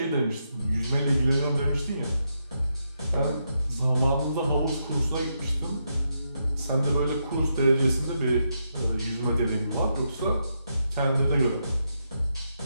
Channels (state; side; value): inverted; both; correlation -0.82